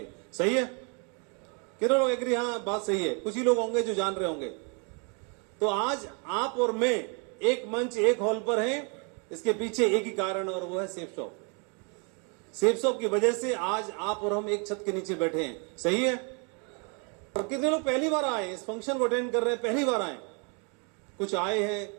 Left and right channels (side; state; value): left; quieter; 35.7 dB